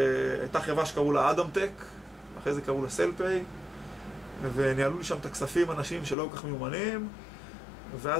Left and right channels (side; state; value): right; drops out; at 6.2 s